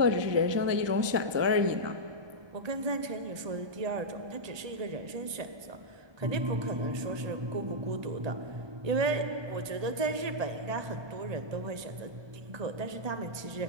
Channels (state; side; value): late; left; 1.2 ms